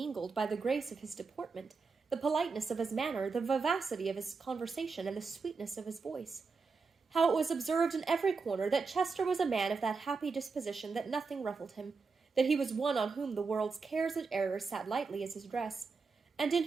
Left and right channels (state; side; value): quieter; left; 4.6 dB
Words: by the grace of his deportment, the politeness of his manner, the vivacity of his conversation, and the sweetness of his voice. How it was observed in every corner that Chester was a man of that happy disposition that nothing ruffled him, that he was one on whom the world's cares and errors sat lightly as his dress, and in